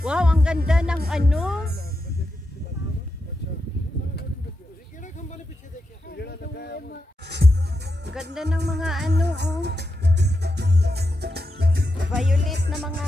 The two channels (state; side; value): normal; both; correlation 0.87